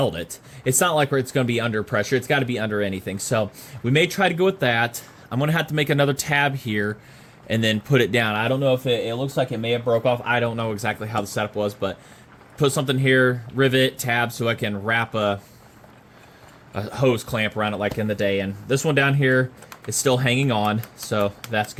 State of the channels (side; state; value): both; identical; correlation 1.00